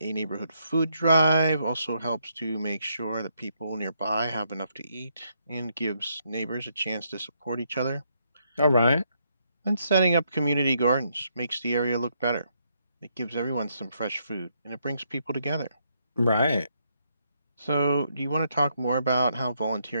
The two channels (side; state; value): both; inverted; correlation -0.76